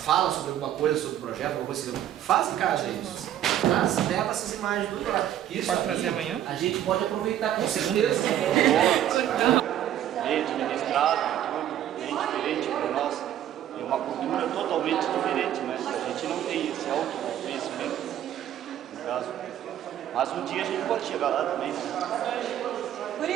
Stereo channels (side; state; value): left; quieter; 11.4 dB